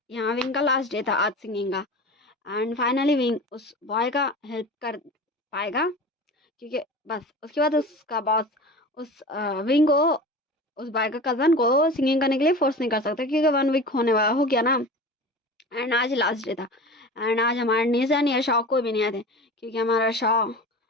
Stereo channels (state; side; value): normal; both; correlation 0.34